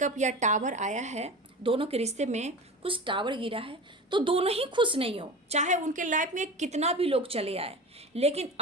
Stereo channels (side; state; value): both; normal; correlation 0.31